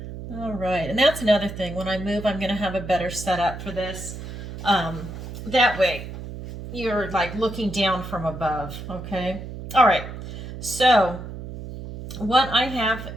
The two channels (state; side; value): noise; right; hum, 10 dB below the sound